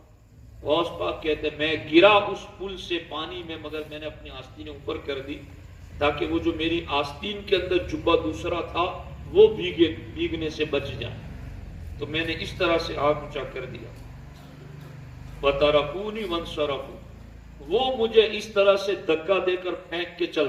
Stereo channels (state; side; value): identical; both; correlation 1.00